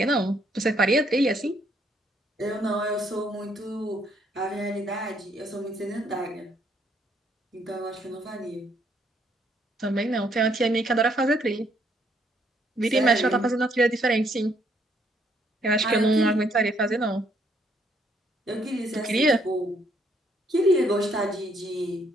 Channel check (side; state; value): both; normal; correlation 0.69